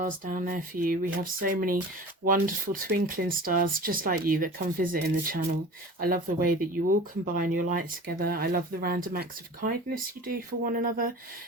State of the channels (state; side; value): normal; both; correlation 0.39